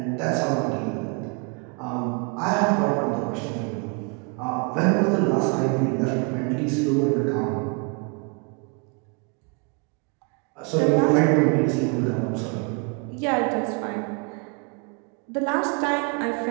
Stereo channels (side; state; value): left; quieter; 34.6 dB